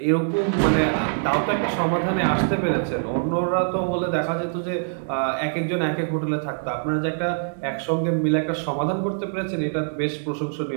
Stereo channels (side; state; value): left; silent; digital silence